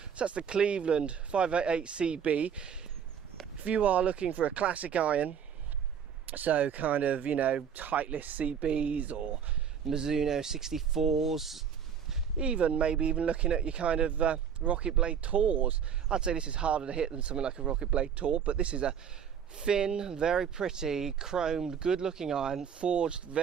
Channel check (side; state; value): left; quieter; 7.7 dB